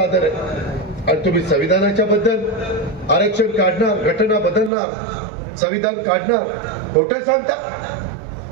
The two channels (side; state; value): left; drops out; at 4.7 s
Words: आहे आणि तुम्ही संविधानाच्या बद्दल आरक्षण काढणार, घटना बदलणार, संविधान काढणार, खोटे सांगता.